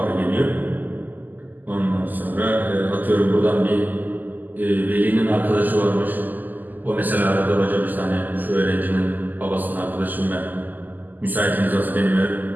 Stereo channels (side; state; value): left; late; 0.085 ms